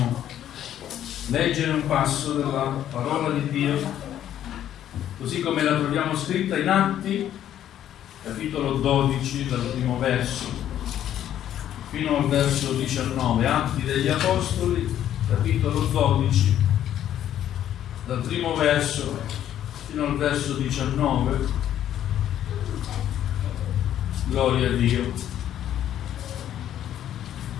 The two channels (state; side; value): quieter; right; 11.1 dB